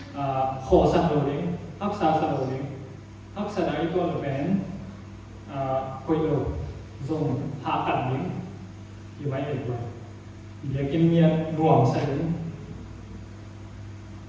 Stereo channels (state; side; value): identical; both; correlation 1.00